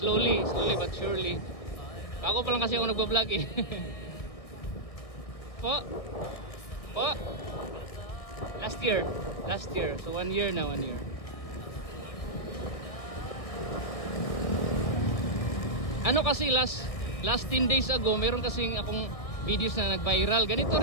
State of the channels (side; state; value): right; late; 1.6 ms